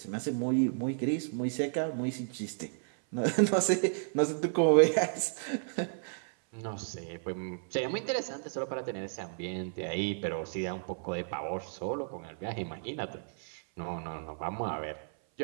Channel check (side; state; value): left; silent; 56 dB below the other